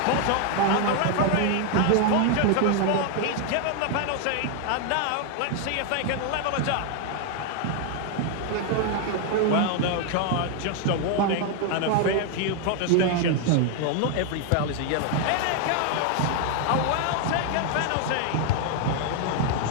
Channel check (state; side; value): different; both; correlation 0.00